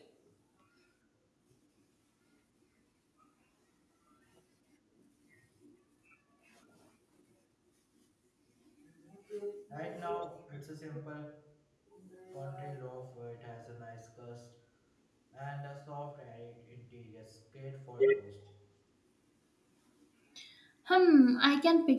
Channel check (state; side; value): identical; both; correlation 1.00